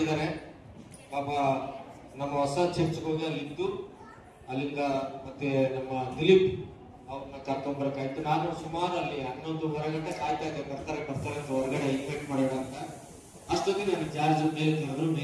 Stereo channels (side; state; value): both; identical; correlation 1.00